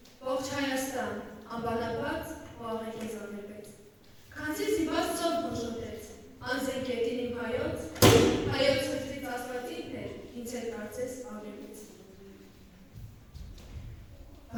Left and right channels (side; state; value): both; identical; correlation 1.00